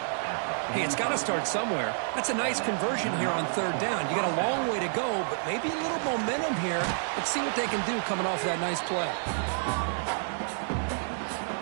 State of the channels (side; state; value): left; silent; digital silence